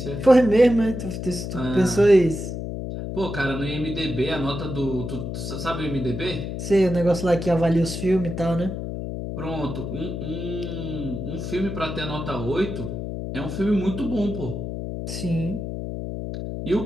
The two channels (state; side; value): noise; left; hum, 5 dB below the sound